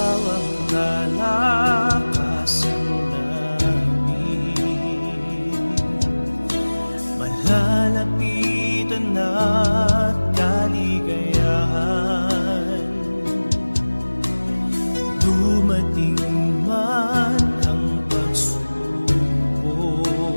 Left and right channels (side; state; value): both; inverted; correlation -1.00